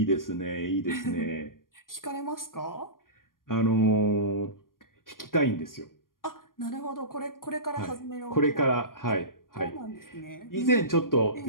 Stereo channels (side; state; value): right; late; 0.91 ms